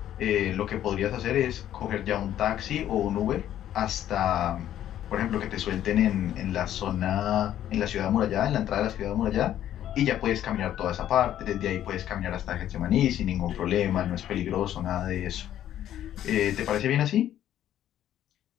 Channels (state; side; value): quieter; right; 11.6 dB